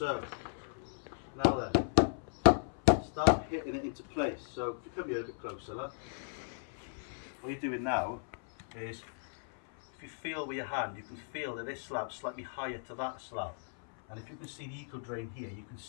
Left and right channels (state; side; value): silent; right; 54 dB below the other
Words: now then, start hitting it into place. So if you come here a bit closer, look. What you're doing now is, if you feel with your hand, you can feel that this slab's slightly higher to that slab. And if you can see the eco drain here, you can